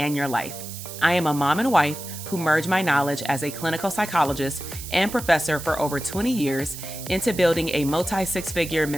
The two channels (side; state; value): right; noise; hiss, 11 dB below the sound